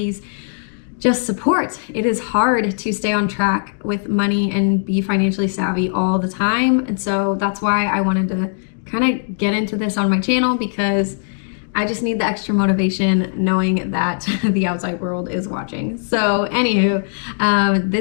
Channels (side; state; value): right; silent; 66 dB below the other